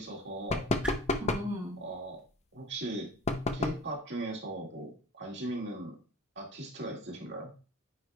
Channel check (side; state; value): both; normal; correlation 0.42